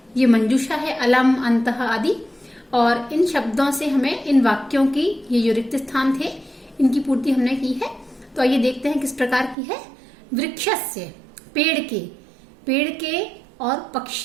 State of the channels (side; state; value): left; drops out; at 9.6 s